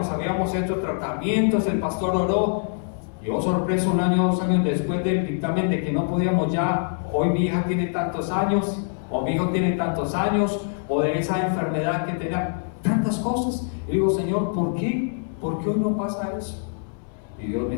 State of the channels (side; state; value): right; silent; digital silence